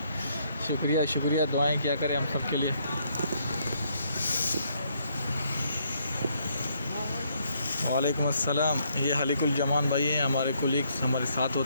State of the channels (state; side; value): inverted; both; correlation -0.71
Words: शुक्रिया, दुआएं क्या करें हम सब के लिए। वालेकुम अस्सलाम। ये हलीकुल जमान भाई हैं, हमारे कोलीग्स हमारे साथ